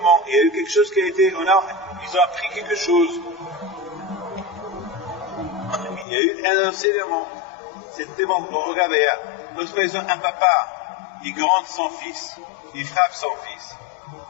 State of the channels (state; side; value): drops out; right; at 6.1 s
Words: il y a eu quelque chose qui a été, ils ont appris quelque chose. Il y a eu un enseignement. C'était bon. Regardez, lorsque par exemple un papa, il gronde son fils, il frappe son fils.